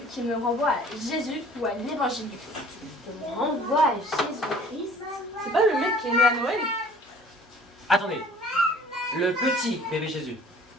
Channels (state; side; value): normal; both; correlation 0.50